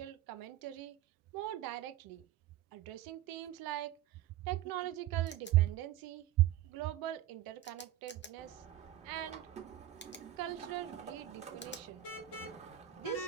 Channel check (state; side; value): quieter; left; 13.3 dB